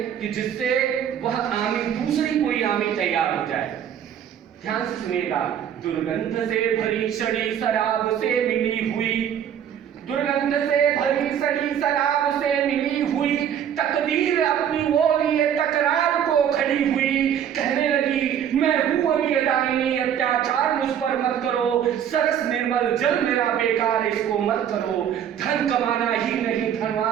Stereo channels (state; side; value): quieter; left; 9.2 dB